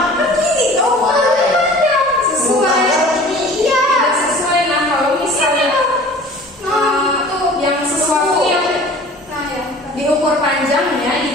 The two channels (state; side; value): normal; both; correlation 0.45